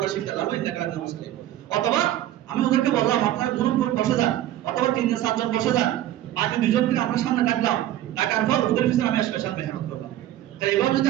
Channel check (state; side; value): quieter; left; 13.1 dB